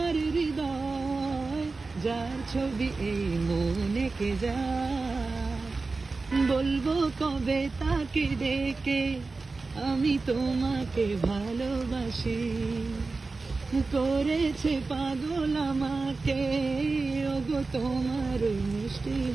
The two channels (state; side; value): quieter; left; 3.8 dB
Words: হৃদয়। যার ছবি এই মনে কে যায়, বলবো কবে তাকে ডেকে আমি তোমাকে ভালোবাসি। করেছে পাগল আমাকে ওগো তোমার মিষ্টি